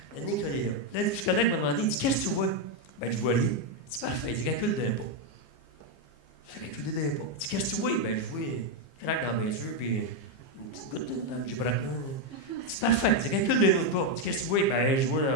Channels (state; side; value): late; right; 15 ms